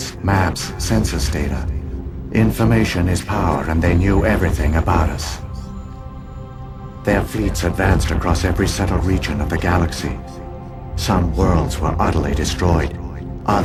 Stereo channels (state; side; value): identical; both; correlation 1.00